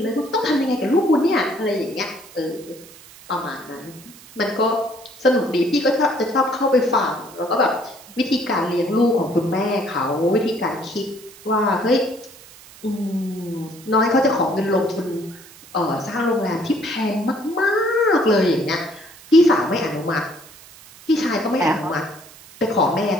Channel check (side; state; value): right; noise; hiss, 21 dB below the sound